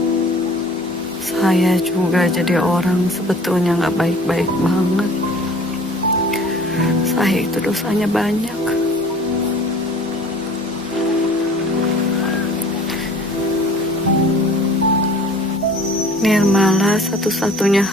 Saya juga jadi orang sebetulnya nggak baik-baik banget. Saya itu dosanya banyak. Nirmala satu-satunya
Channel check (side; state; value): both; normal; correlation 0.48